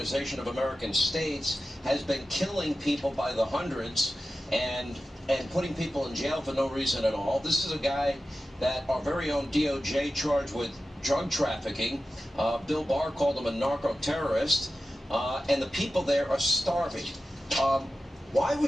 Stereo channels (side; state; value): both; normal; correlation 0.94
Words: of American States, has been killing people by the hundreds and putting people in jail for no reason at all. This is a guy that our very own DOJ charged with drug trafficking. Bill Barr called him a narco-terrorist, and the people there are starving. Why